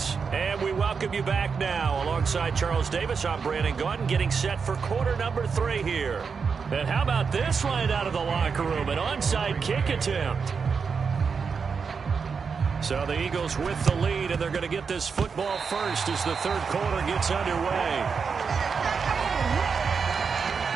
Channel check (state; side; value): quieter; left; 5.6 dB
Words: And we welcome you back now. Alongside Charles Davis, I'm Brandon Gaudin, getting set for quarter number 3 here. And how about this right out of the locker room? An onside kick attempt. So the Eagles with the lead, and they're going to get this football first as the third quarter gets underway.